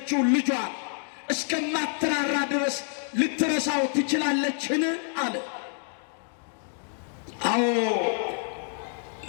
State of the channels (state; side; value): silent; right; 56 dB below the other